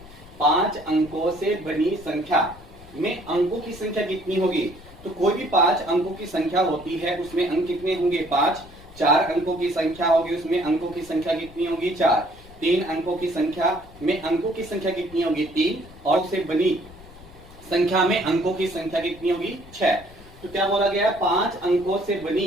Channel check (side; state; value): left; noise; rumble, 21 dB below the sound